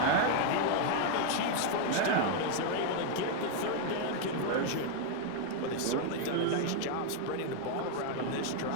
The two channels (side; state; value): both; different; correlation 0.00